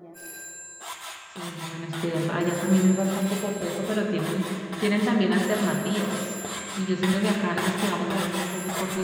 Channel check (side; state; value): both; identical; correlation 1.00